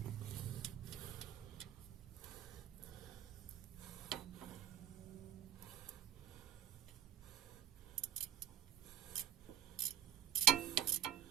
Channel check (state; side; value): quieter; left; 10.5 dB